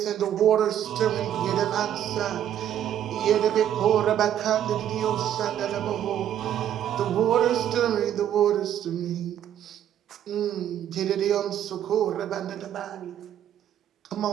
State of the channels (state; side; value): quieter; left; 10.6 dB